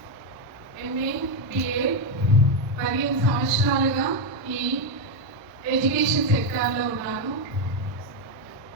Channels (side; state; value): both; normal; correlation 0.05